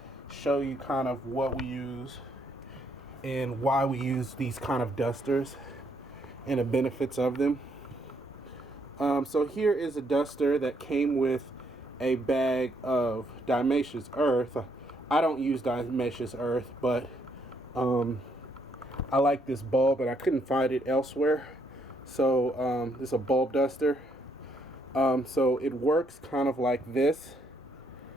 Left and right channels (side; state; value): both; normal; correlation 0.72